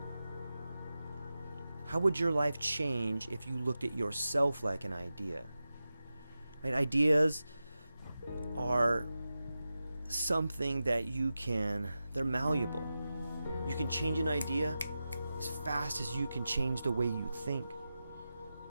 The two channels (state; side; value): inverted; both; correlation -0.93